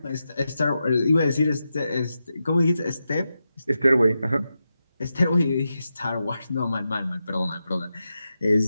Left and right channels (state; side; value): inverted; both; correlation -0.89